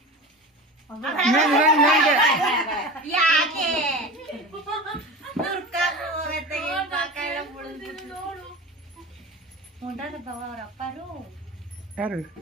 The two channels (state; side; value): normal; both; correlation 0.31